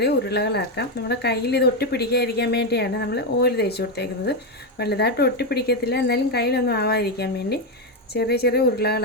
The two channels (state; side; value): normal; both; correlation 0.07